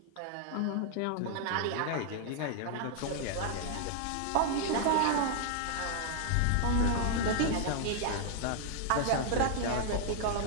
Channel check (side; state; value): both; different; correlation 0.00